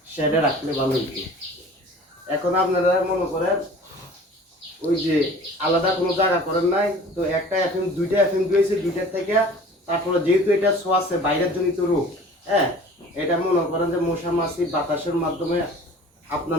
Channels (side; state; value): both; normal; correlation 0.45